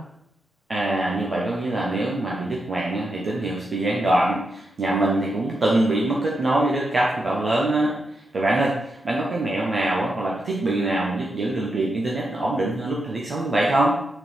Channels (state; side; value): normal; both; correlation 0.85